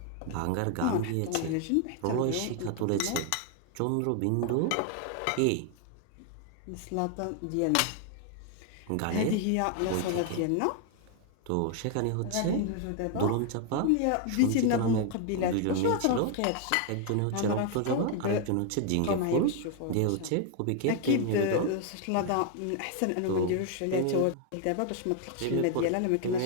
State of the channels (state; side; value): different; both; correlation 0.00